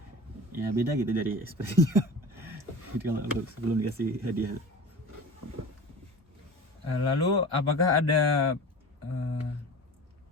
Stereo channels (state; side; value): normal; both; correlation 0.35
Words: ya beda gitu dari ekspresinya. Jadi kalau sebelum dikasih hadiah. Lalu apakah ada